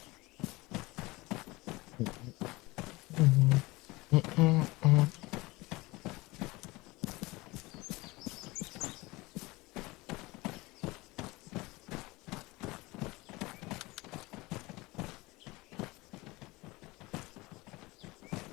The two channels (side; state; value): right; quieter; 22.2 dB